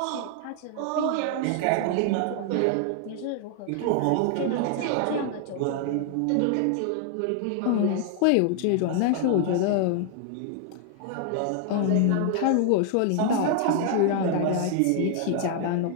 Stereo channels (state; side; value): different; both; correlation 0.00